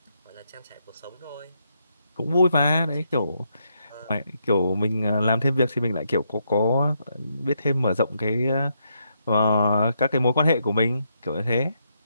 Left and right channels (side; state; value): both; inverted; correlation -0.78